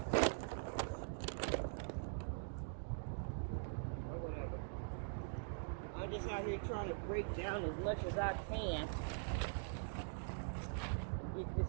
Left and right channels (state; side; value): silent; left; digital silence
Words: Or whatever. I'm just out here trying to break down as much as I can. Get this